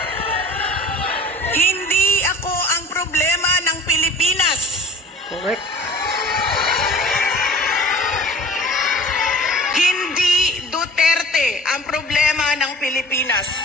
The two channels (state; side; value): normal; both; correlation 0.45